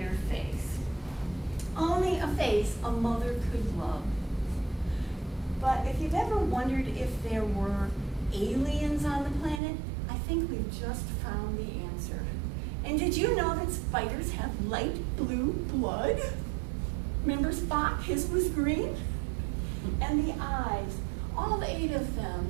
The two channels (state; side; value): drops out; left; at 9.6 s